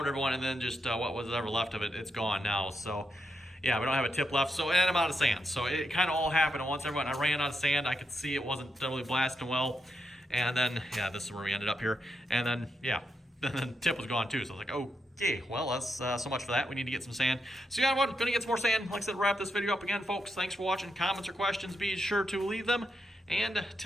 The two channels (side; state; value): both; normal; correlation 0.83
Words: everyone, and then just what was ever left of it, it's gone now. So yeah, we don't have a tip left, so, and I'm out of sand. So it kind of all happened at once, everyone. I ran out of sand. I could see it wasn't really blasting well. And then, yeah, this is where we ended up here. And then, yeah, then the tip was gone too. So I was like, okay, well, that's so much for that. We need to get some sand. So yeah, everyone, gonna get some more sand. Like I said, wrap this video up again, folks. Thanks for watching. Comments or questions, be sure to leave them. And